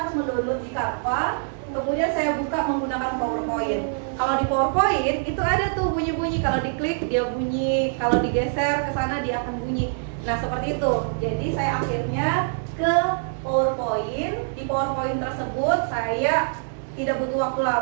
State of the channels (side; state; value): left; silent; digital silence